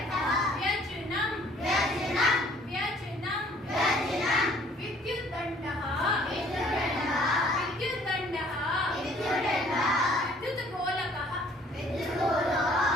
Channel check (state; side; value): normal; both; correlation 0.57